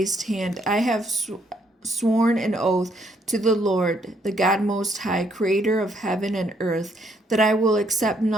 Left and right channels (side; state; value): both; normal; correlation 0.70